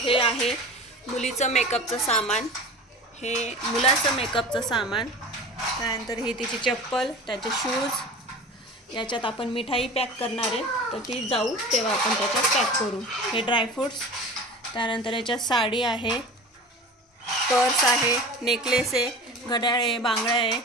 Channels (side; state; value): both; normal; correlation 0.35